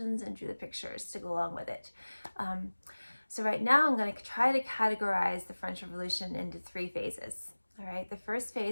and drew the pictures to go along with it. So right now I'm going to try to categorize the French Revolution into 3 phases. All right, the first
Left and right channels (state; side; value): inverted; both; correlation -1.00